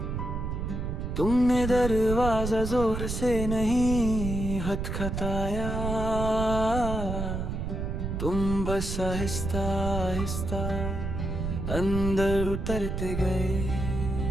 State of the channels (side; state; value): right; noise; rumble, 3 dB below the sound